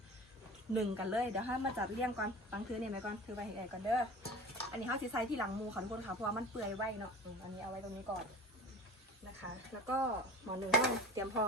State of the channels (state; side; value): normal; both; correlation 0.38